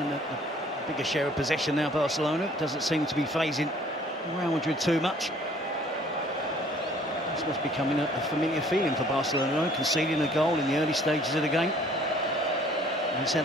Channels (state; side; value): normal; both; correlation 0.57